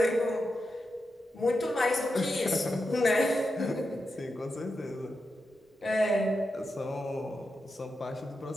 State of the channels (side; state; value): both; normal; correlation 0.88